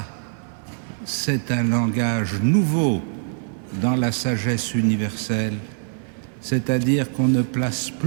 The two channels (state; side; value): silent; left; digital silence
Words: c'est un langage nouveau dans la sagesse universelle, c'est-à-dire qu'on ne place